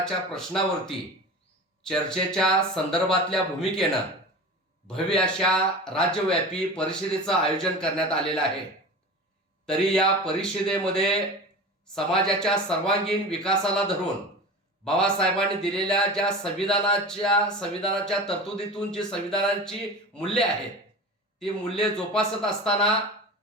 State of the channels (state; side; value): normal; both; correlation 0.32